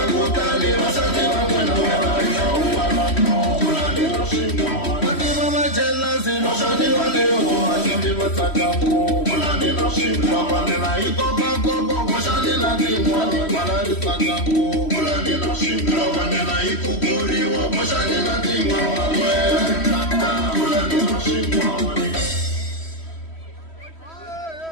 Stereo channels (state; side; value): late; right; 3.1 ms